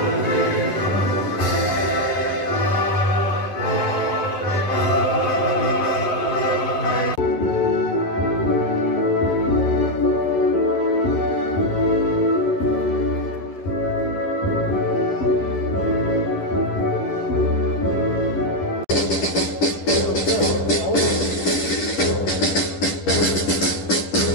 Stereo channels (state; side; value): late; right; 11 ms